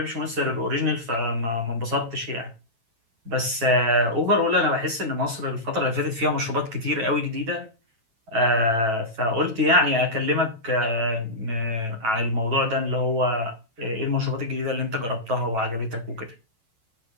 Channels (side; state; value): left; late; 9.1 ms